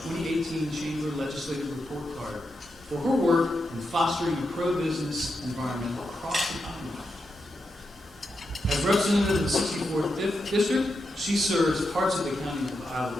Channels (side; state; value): both; normal; correlation 0.86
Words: 2018 Chamber Legislative Report Card for her work in fostering a pro-business environment across the Commonwealth. As representative of the 64th District, she serves parts of the county of Isle